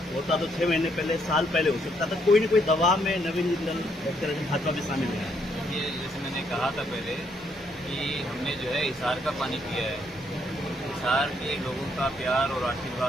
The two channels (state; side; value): normal; both; correlation 0.72